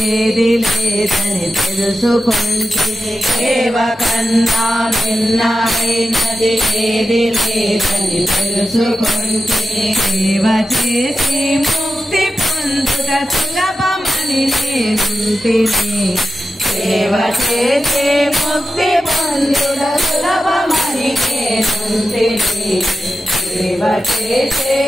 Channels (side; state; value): both; normal; correlation 0.91